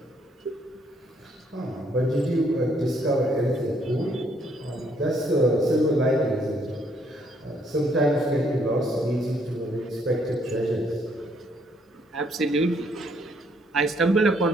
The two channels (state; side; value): normal; both; correlation 0.69